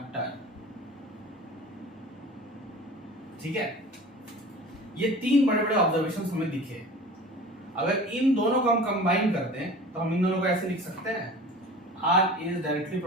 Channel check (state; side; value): normal; both; correlation 0.39